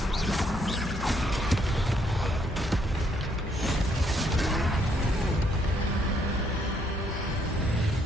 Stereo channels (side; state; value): both; normal; correlation 0.71